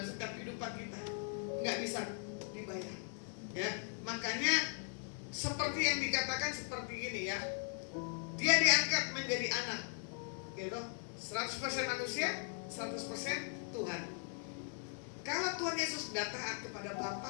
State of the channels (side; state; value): right; silent; 52 dB below the other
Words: setiap kehidupan kita, nggak bisa dibayar, ya. Makanya seperti yang dikatakan seperti ini, ya, dia diangkat menjadi anak, gitu, 100% manusia, 100% Tuhan. Kalau Tuhan Yesus sudah taat kepada